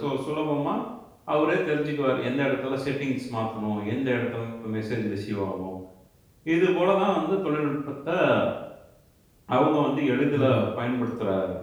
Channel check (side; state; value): both; identical; correlation 1.00